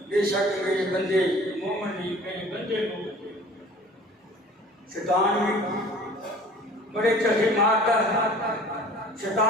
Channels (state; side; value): normal; both; correlation 0.47